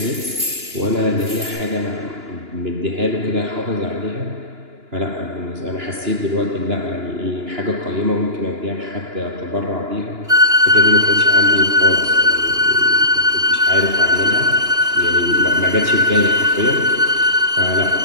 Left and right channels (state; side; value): late; left; 2.9 ms